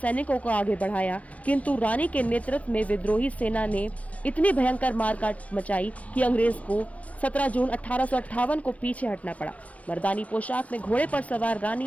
को आगे बढ़ाया, किंतु रानी के नेतृत्व में विद्रोही सेना ने इतनी भयंकर मारकाट मचाई कि अंग्रेज को 17 जून 1858 को पीछे हटना पड़ा। मर्दानी पोशाक में घोड़े पर सवार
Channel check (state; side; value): late; right; 0.066 ms